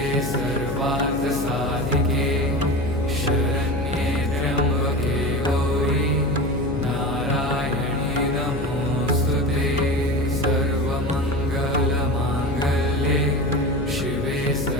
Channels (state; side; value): noise; left; hum, 5 dB below the sound